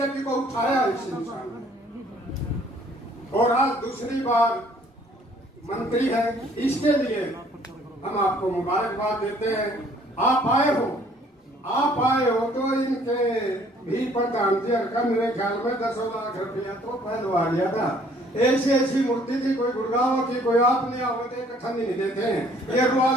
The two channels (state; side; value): normal; both; correlation 0.59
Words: को उठाया इस इंसान ने, और आज दूसरी बार मंत्री है। इसके लिए हम आपको मुबारकबाद देते हैं। आप आए हो तो इनके भी प्रधान जी का मेरे ख्याल में 10 लाख रुपया तो पहलवा दिया था। ऐसी मूर्ति थी, कोई गुड़गांव की, कोई आप नहीं आवते, इकट्ठा नहीं देते हैं, ये